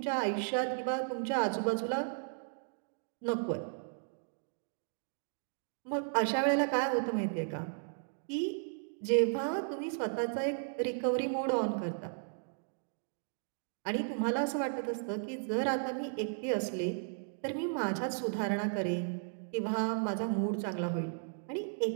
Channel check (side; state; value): left; silent; digital silence